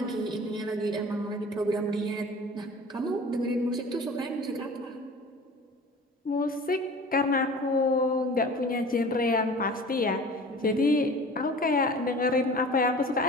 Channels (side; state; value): both; normal; correlation 0.41